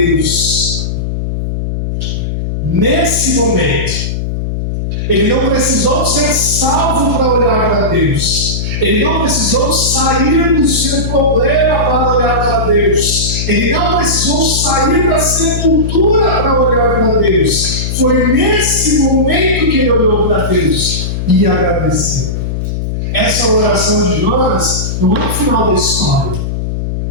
Nesse momento, ele não precisou ser salvo para olhar para Deus. Ele não precisou sair do seu problema para olhar para Deus. Ele não precisou sair da sepultura para olhar para Deus. Foi nesse momento que ele olhou para Deus e agradeceu. Essa oração de Jonas não é o final da história.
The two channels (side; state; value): left; noise; hum, 3 dB below the sound